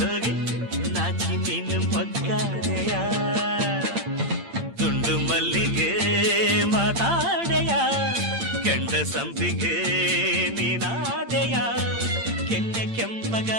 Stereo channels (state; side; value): late; left; 8.7 ms